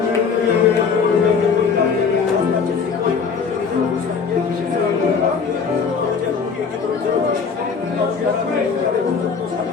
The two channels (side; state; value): right; quieter; 5.7 dB